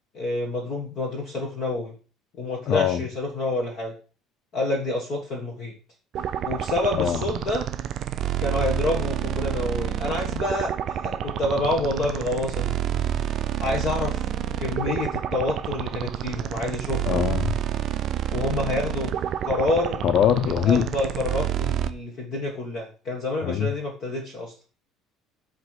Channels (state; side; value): normal; both; correlation 0.46